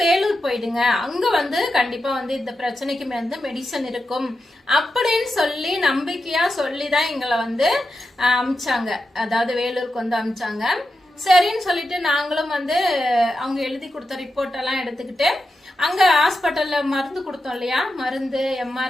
வேலூர் போயிடுங்க, அங்க வந்து கண்டிப்பா வந்து இந்த பிரச்சனைக்கு வந்து மெடிசன் இருக்கும் அப்படின்னு சொல்லி நம்பிக்கையா சொல்லிதான் எங்களை வந்து அமிச்சாங்க. அதாவது வேலூருக்கு வந்து அமிச்சாங்க. சரின்னு சொல்லிட்டு நாங்களும் வந்து அவங்க எழுதி கொடுத்த ரிப்போர்ட் எல்லாம் எடுத்துக்கிட்டு அங்க ஹாஸ்பிட்டல்ல மருந்து கொடுத்தோம் இல்லையா, மருந்து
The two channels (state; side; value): normal; both; correlation 0.89